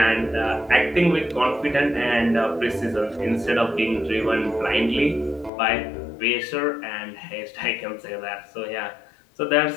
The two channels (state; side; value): drops out; right; at 5.5 s